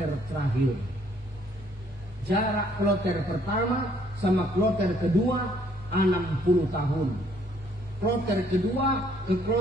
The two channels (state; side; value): normal; both; correlation 0.64